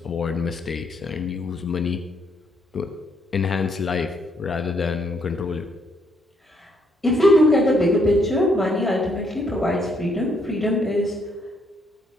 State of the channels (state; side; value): normal; both; correlation 0.71